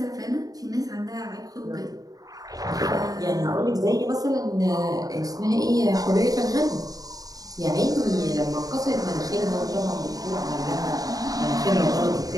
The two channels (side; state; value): left; late; 0.18 ms